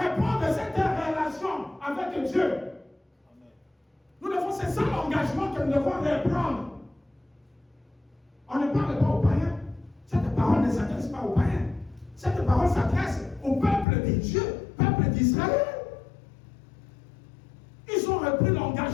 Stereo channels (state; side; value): drops out; right; at 13.9 s